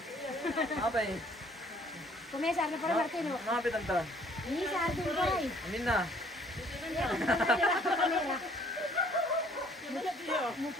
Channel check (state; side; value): normal; both; correlation 0.59